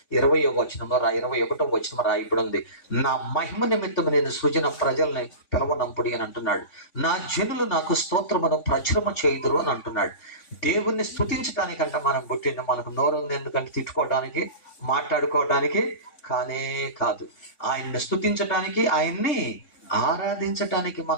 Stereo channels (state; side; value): late; right; 3.5 ms